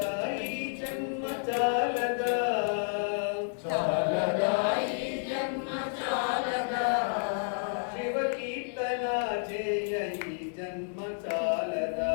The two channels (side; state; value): right; silent; digital silence